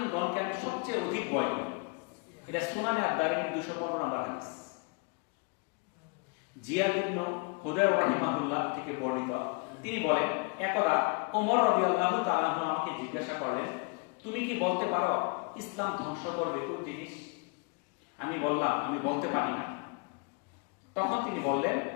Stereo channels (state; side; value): quieter; right; 33.1 dB